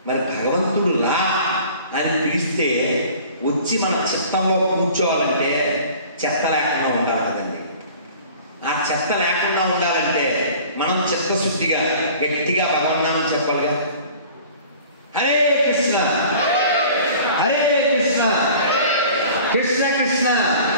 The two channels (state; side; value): inverted; both; correlation -0.46